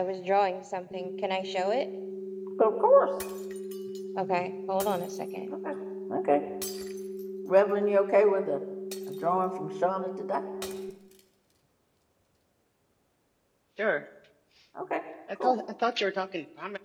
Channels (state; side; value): identical; both; correlation 1.00